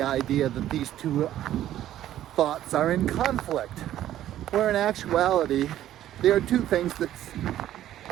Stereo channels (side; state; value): left; quieter; 12.5 dB